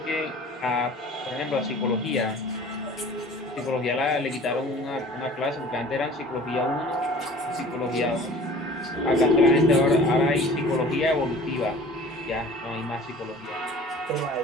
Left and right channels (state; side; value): normal; both; correlation 0.45